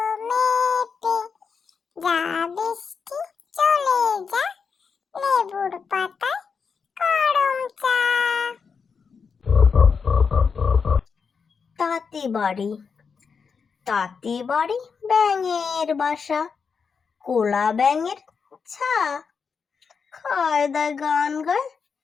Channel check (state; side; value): quieter; right; 5.7 dB